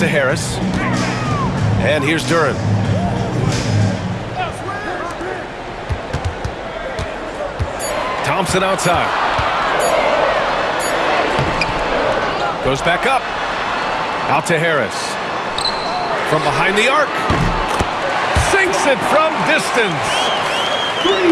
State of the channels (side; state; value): both; identical; correlation 1.00